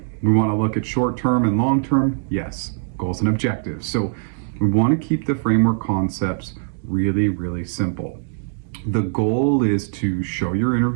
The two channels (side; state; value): left; silent; digital silence